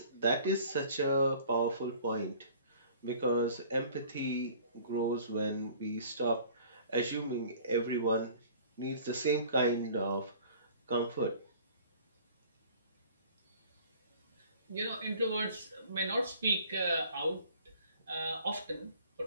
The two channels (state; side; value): inverted; both; correlation -0.50